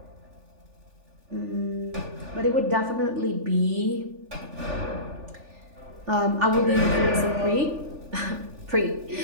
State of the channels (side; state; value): left; late; 3.4 ms